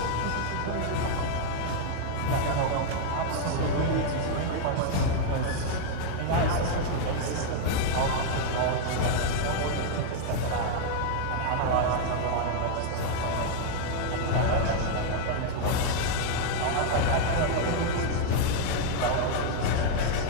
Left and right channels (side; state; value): both; different; correlation 0.00